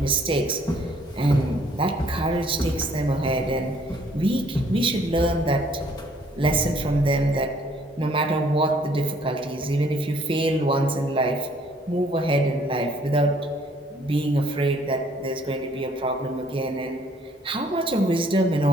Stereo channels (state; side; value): normal; both; correlation 0.61